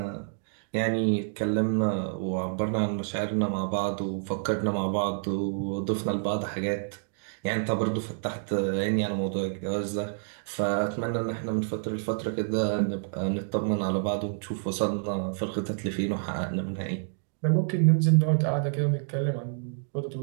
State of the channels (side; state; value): left; silent; digital silence